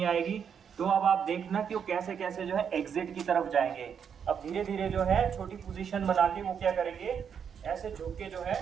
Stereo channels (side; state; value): left; quieter; 7.5 dB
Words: आएगी, तो अब आप देखना कि वो कैसे कैसे जो है एग्जिट की तरफ जाएंगे। अब धीरे धीरे जो है छोटी पोजीशन बना के वो क्या करेंगे, ऐसे झुक के जो